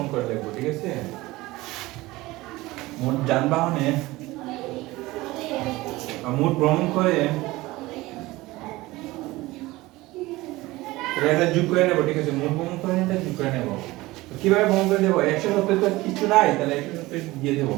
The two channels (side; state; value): left; quieter; 19.6 dB